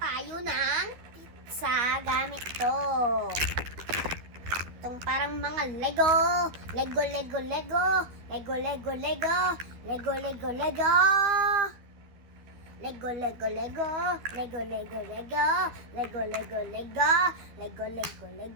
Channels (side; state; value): left; late; 12 ms